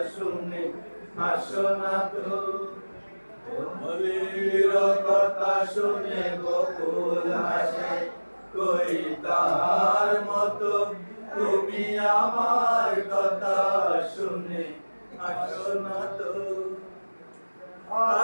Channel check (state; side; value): inverted; both; correlation -1.00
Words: শুনে আসো না তো। মলির কথা শুনে বকুল হাসে, কই তাহার মতো তুমি আমার কথা শুনে আসো না তো।